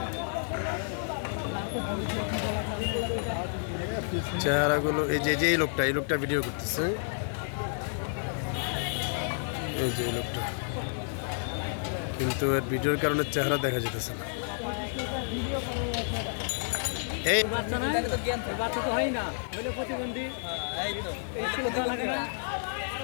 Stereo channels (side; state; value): right; silent; digital silence